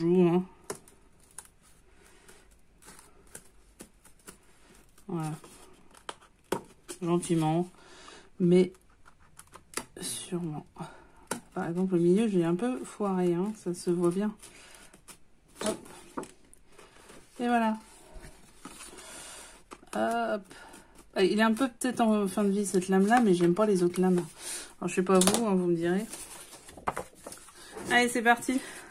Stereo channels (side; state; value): both; identical; correlation 1.00